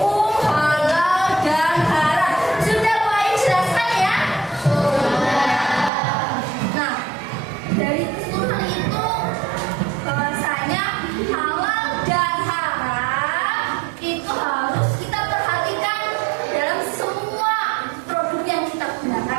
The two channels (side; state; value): left; drops out; at 5.9 s